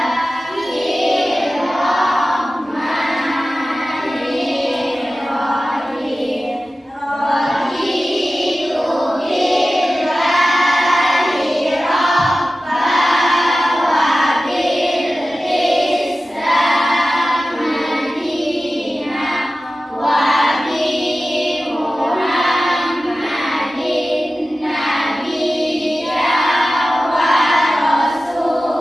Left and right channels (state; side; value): normal; both; correlation 0.95